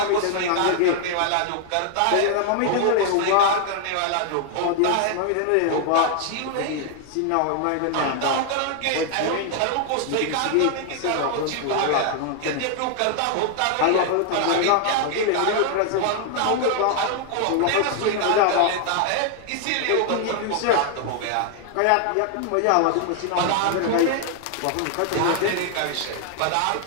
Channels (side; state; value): both; different; correlation 0.00